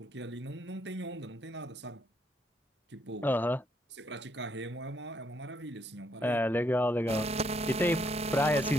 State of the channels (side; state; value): both; normal; correlation 0.72